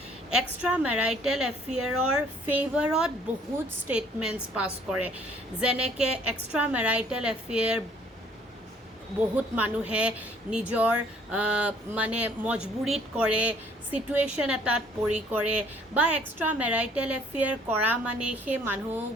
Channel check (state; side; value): normal; both; correlation 0.60